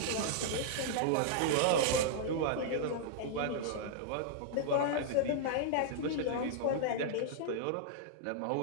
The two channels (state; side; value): different; both; correlation -0.01